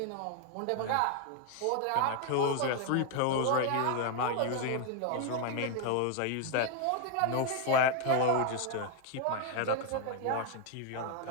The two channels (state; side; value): different; both; correlation 0.00